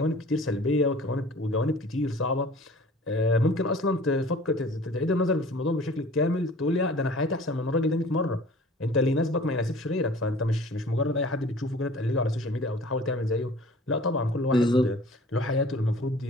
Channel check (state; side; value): normal; both; correlation 0.47